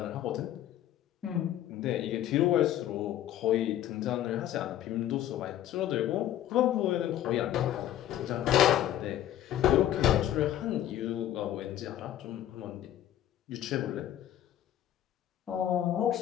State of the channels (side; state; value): right; quieter; 12.1 dB